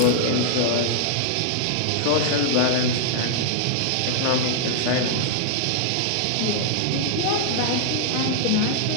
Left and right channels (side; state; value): both; different; correlation -0.01